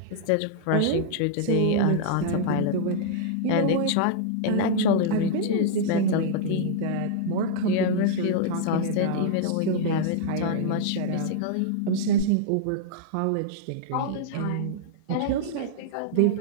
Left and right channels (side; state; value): both; different; correlation -0.01